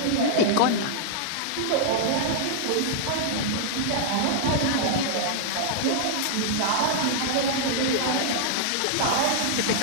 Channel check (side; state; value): both; different; correlation -0.01